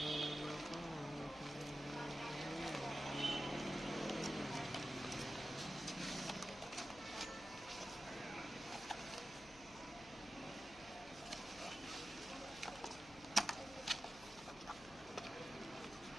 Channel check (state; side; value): noise; left; hum, 19 dB below the sound